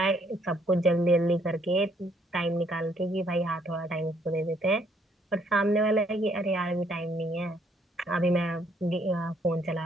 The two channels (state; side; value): normal; both; correlation 0.68